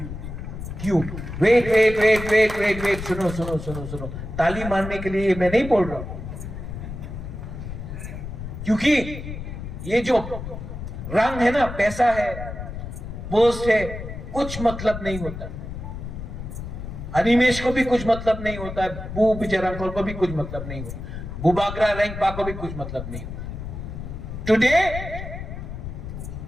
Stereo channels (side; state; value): left; noise; rumble, 8 dB below the sound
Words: क्यों? वेट. सुनो. ताली मारने के लिए मैं नहीं बोल रहा हूं, क्योंकि ये जो रंग है ना, पैसा है, पोस्ट है, कुछ मतलब नहीं होता. अनिमेश को भी कुछ मतलब नहीं होता है, बू विजय रामखोल को भी कुछ मतलब नहीं होता. बुबाग्रा रेंगपा को भी कुछ मतलब नहीं। Today